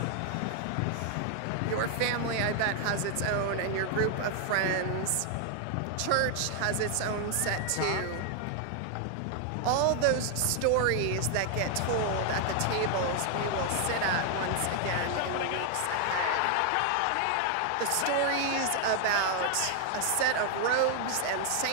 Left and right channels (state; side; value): different; both; correlation 0.00